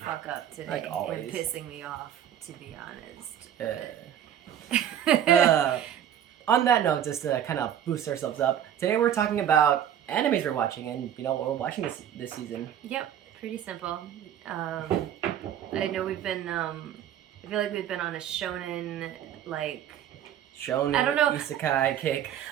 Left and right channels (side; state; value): left; quieter; 10.1 dB